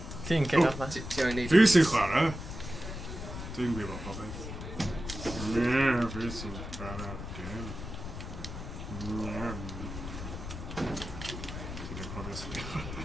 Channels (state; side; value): noise; left; rumble, 8 dB below the sound